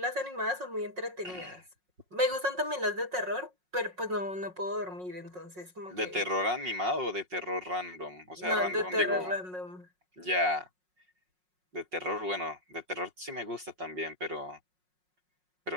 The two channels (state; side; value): late; left; 5.5 ms